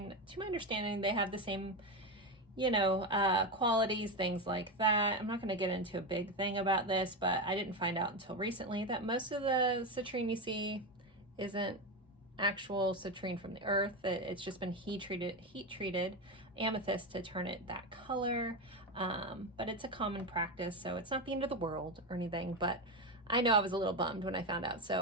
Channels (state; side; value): normal; both; correlation 0.14